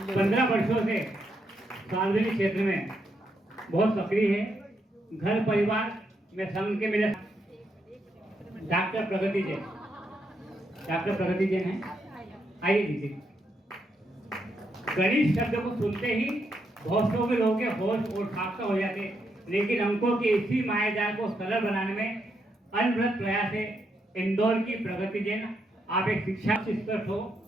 वर्षों से सार्वजनिक क्षेत्र में बहुत सक्रिय है। घर परिवार में संघ के मेरे डॉक्टर प्रगति जैन। डॉक्टर प्रगति जैन है, आइए दीजिए। गणित शब्द को सुनते ही बहुत लोग के होश और खाका हो जाते, लेकिन अंकों के इसी मायाजाल को सरल बनाने में अनवरत प्रयास है इंदौर की प्रगति जैन। आप एक शिक्षा स्तर हो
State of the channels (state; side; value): normal; both; correlation 0.79